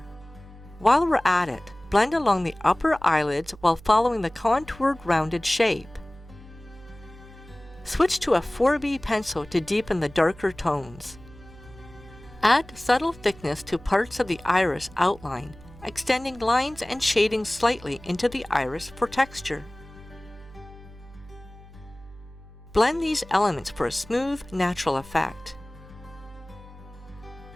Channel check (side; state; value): right; noise; hum, 20 dB below the sound